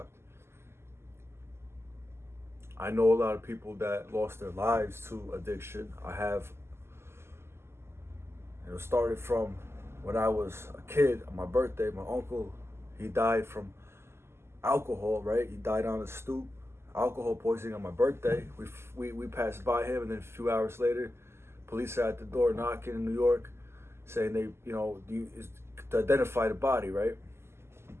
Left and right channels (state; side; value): late; left; 0.12 ms